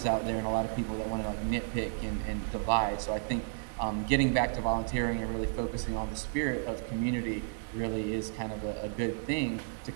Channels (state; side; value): silent; left; 56 dB below the other